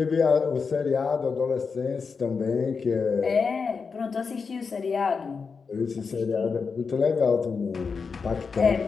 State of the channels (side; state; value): right; quieter; 5.2 dB